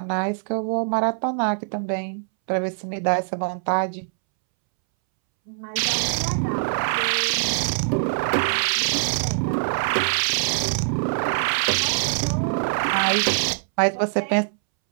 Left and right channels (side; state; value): left; silent; 63 dB below the other